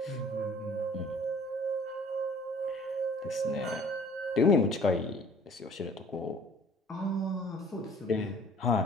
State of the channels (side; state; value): both; normal; correlation 0.51